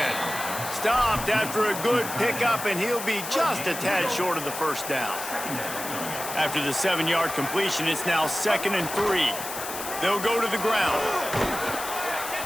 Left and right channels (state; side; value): noise; left; hiss, 8 dB below the sound